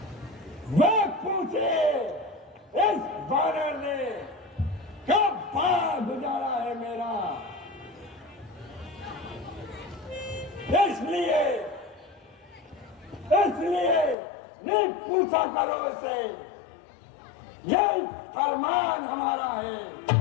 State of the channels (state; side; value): drops out; right; at 14.2 s